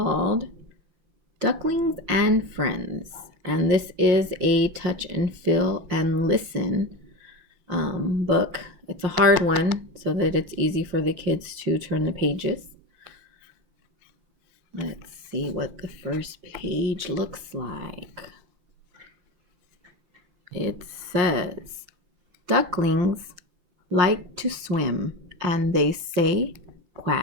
Ducklings and Friends. And this is a touch and feel and listen book. It's a hard one so that it's easy for the kids to turn the pages. Let's see what the first page looks like. It says, ducklings like to swim, and they say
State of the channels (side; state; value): left; late; 5.7 ms